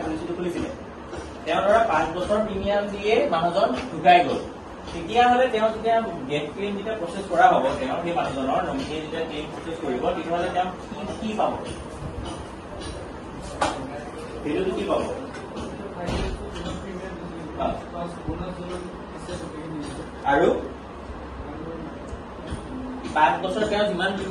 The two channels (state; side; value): identical; both; correlation 1.00